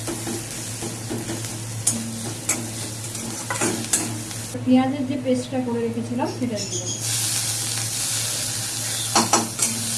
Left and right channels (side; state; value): both; identical; correlation 1.00